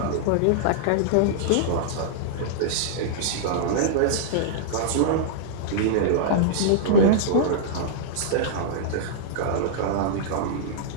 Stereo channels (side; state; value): both; different; correlation -0.02